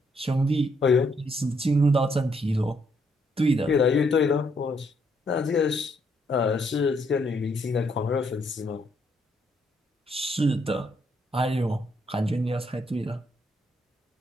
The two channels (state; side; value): normal; both; correlation 0.73